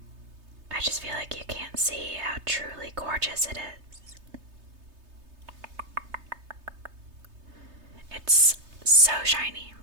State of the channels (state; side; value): late; left; 3.3 ms